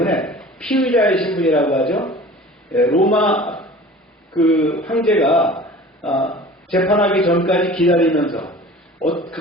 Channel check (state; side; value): normal; both; correlation 0.43